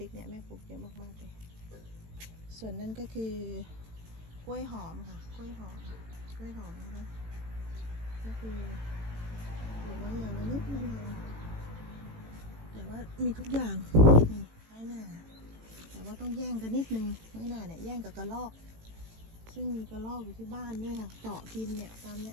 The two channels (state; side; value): late; left; 18 ms